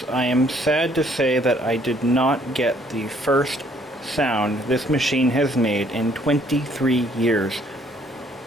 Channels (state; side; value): normal; both; correlation 0.64